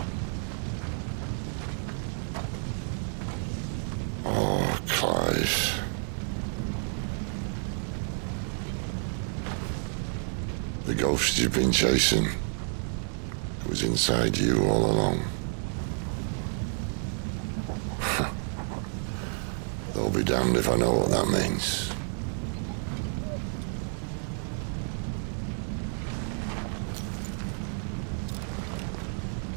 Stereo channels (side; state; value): left; silent; 58 dB below the other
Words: Clive. The ghost you've been chasing, it was inside you all along. They'll be damned if I know what that means.